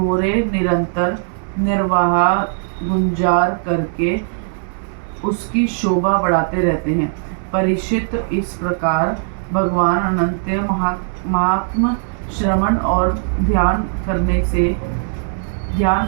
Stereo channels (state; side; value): silent; left; digital silence